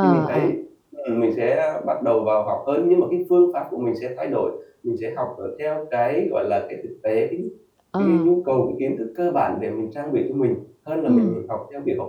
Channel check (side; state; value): both; identical; correlation 1.00